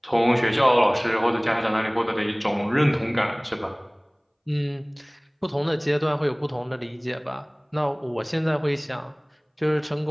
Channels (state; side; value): identical; both; correlation 1.00